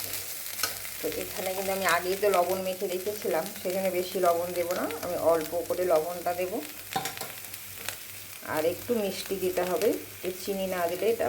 তো এখানে কিন্তু আমি আগেই তো লবণ মেখে রেখেছিলাম, সেখানে বেশি লবণ দেবো না, আমি অল্প করে লবণটা দেব। আর একটু মিষ্টি দিতে হবে, চিনি না দিলে এটা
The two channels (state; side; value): identical; both; correlation 1.00